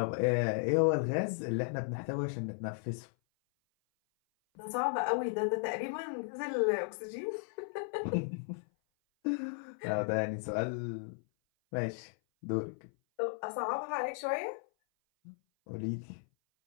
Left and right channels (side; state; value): right; silent; 54 dB below the other